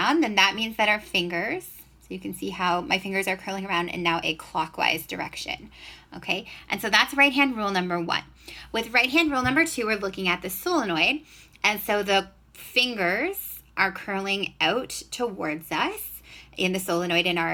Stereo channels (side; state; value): both; identical; correlation 1.00